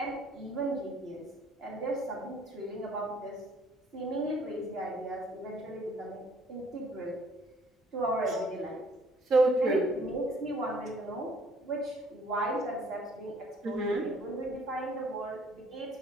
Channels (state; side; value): normal; both; correlation 0.59